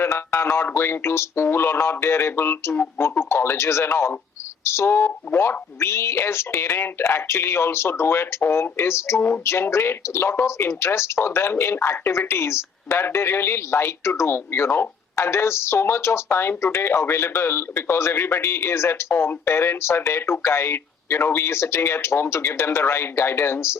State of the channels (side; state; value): right; quieter; 6.0 dB